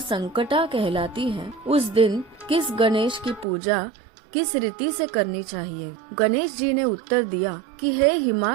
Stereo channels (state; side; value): drops out; left; at 3.5 s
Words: कहलाती है, उस दिन किस गणेश की पूजा किस रीति से करनी चाहिए। गणेश जी ने उत्तर दिया कि हे